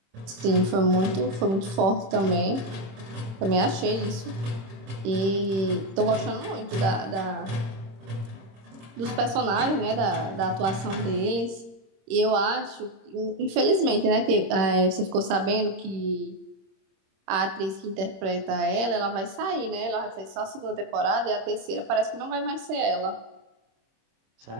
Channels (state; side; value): late; left; 26 ms